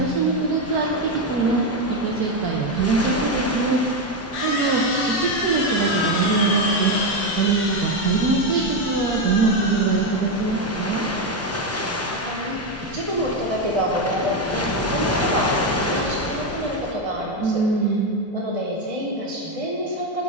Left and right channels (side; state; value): both; normal; correlation 0.08